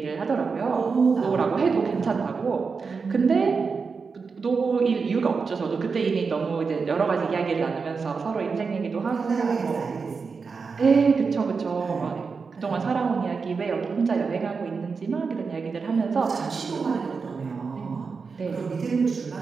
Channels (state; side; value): quieter; left; 5.0 dB